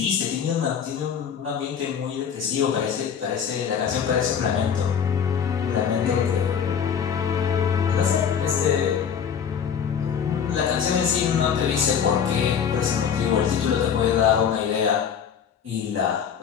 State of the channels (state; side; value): quieter; right; 7.6 dB